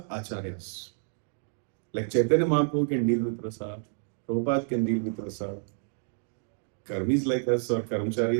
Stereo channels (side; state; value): left; silent; digital silence